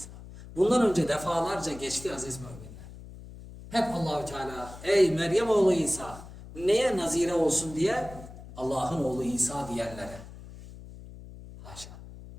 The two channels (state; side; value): noise; left; hum, 15 dB below the sound